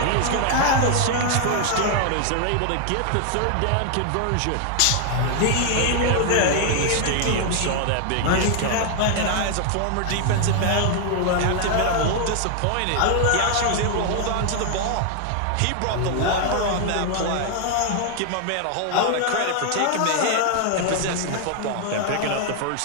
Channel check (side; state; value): both; different; correlation 0.00